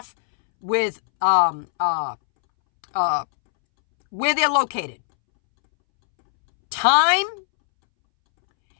with where they're located. Time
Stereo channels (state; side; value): silent; right; 66 dB below the other